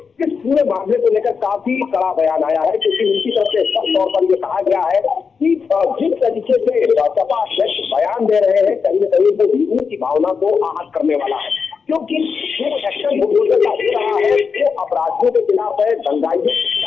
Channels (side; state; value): right; quieter; 5.6 dB